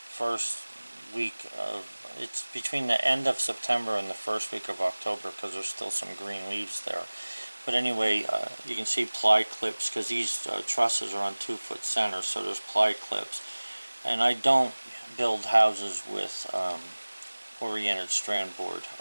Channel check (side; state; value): both; inverted; correlation -1.00